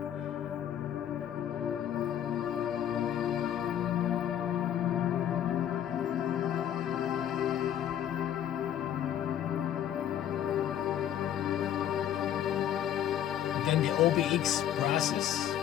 Then the OBX process.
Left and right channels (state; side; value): quieter; right; 10.5 dB